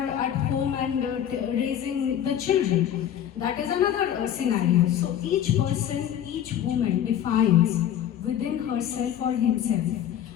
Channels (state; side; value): quieter; right; 10.3 dB